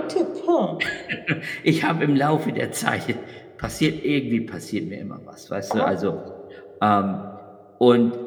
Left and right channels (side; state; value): both; identical; correlation 1.00